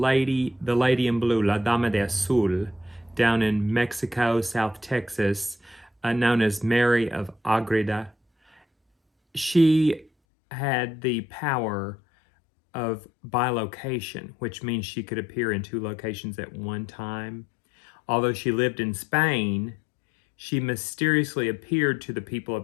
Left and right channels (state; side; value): drops out; right; at 10.1 s